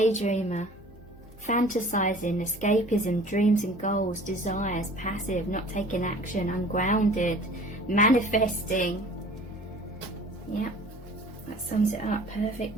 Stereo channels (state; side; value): normal; both; correlation 0.47